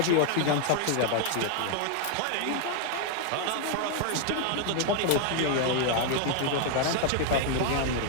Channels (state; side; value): different; both; correlation 0.00